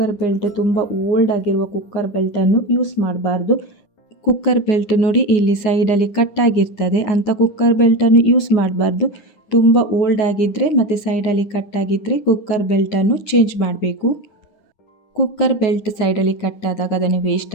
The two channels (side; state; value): right; late; 9.8 ms